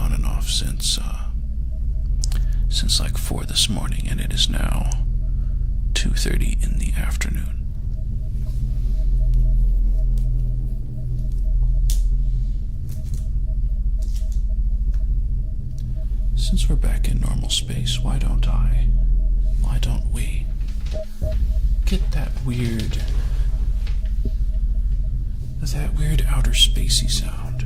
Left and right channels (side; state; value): both; identical; correlation 1.00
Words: and off since like 4 this morning, and it is now 2:30 in the afternoon. Since we're back in normal space, why don't we get that weird outer spacey sound?